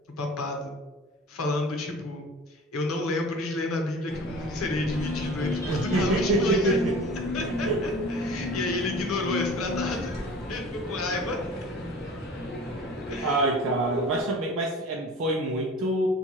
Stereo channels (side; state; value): both; normal; correlation 0.41